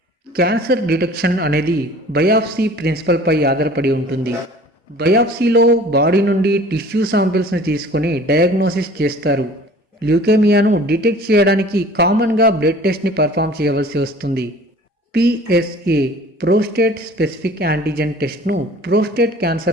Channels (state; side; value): normal; both; correlation 0.48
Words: క్యాన్సర్ డిటెక్షన్ అనేది బయాప్సీ ప్రిన్సిపల్పై ఆధారపడి ఉంటుంది. బయాప్సీలో బాడీ నుండి టిష్యూ శాంపిల్స్ని తీసుకొని డయాగ్నోసిస్ చేస్తారు. ల్యూకేమియాను డిటెక్ట్ చేయడానికి కామన్గా బ్లడ్ టెస్ట్ని పర్ఫామ్ చేయవలసి వస్తుంది. PSA ప్రోస్టేట్ స్పెసిఫిక్ యాంటీజెన్ టెస్ట్ను ప్రోస్టేట్